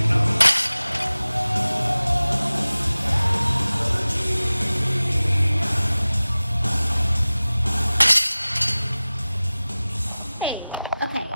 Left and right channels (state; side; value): inverted; both; correlation -0.98